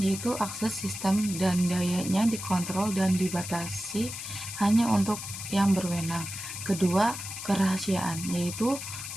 akses sistem dan dayanya dikontrol dan dibatasi hanya untuk yang berwenang. Kedua, kerahasiaan, yaitu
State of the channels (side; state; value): left; noise; hiss, 8 dB below the sound